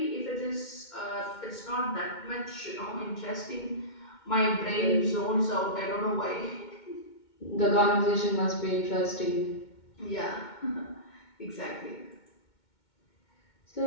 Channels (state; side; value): late; right; 2.2 ms